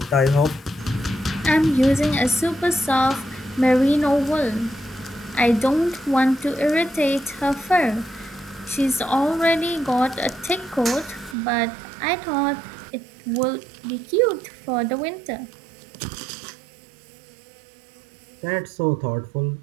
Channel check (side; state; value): left; drops out; at 11.4 s